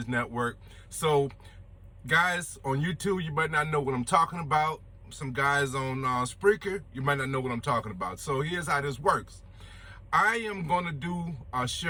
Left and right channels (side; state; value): both; identical; correlation 1.00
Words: Network. So, guys on YouTube, you might not know what I'm talking about. Some guys on Spreaker, you might not know what I'm talking about. So here's how this works. I am gonna do a